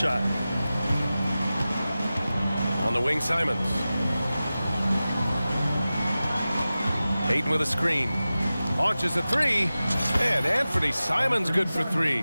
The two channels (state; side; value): inverted; both; correlation -0.95